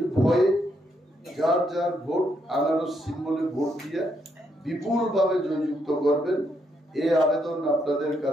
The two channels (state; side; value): normal; both; correlation 0.77